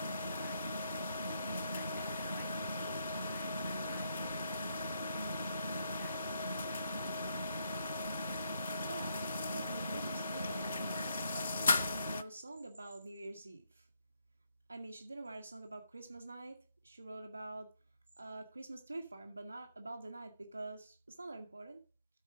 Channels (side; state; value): both; inverted; correlation -0.76